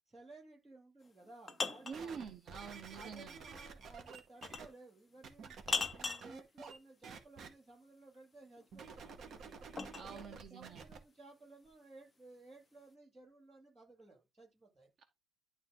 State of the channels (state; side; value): normal; both; correlation 0.79